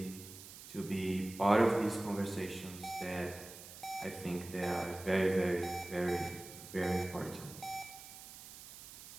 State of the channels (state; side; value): noise; right; hiss, 15 dB below the sound